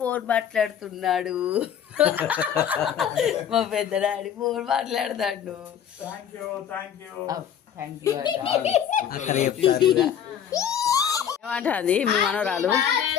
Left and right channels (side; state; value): right; quieter; 9.0 dB